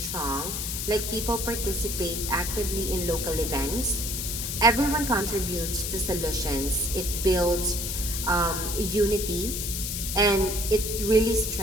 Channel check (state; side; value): noise; left; hiss, 3 dB below the sound